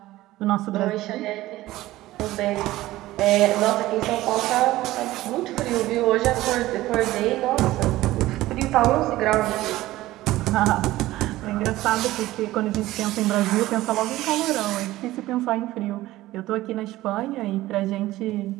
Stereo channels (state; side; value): quieter; left; 16.6 dB